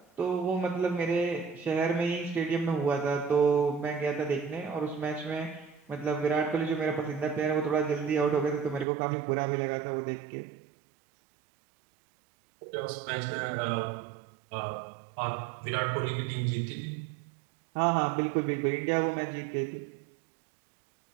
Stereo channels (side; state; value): left; drops out; at 8.8 s